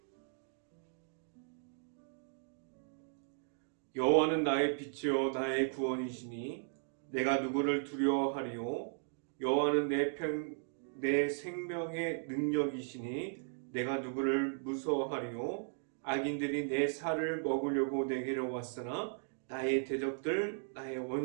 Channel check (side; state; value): left; silent; digital silence